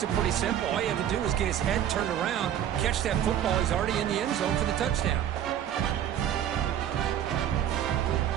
it pretty simple. All you have to do is get his head turned around, catch that football. He's already in the end zone for the touchdown.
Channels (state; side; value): quieter; left; 10.5 dB